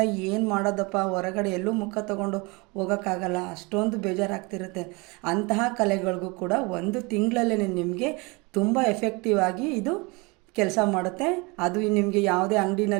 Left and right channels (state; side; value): quieter; left; 27.2 dB